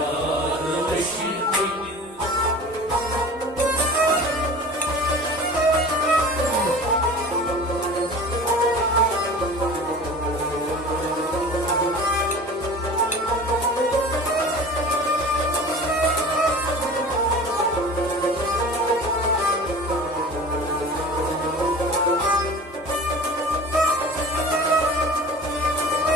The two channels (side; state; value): both; normal; correlation 0.39